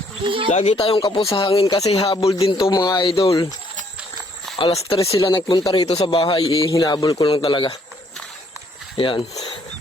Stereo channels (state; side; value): normal; both; correlation 0.67